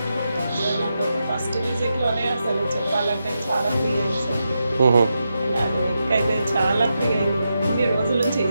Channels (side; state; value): both; inverted; correlation -0.87